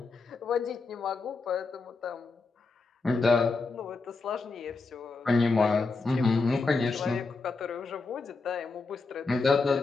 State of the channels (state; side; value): quieter; right; 4.0 dB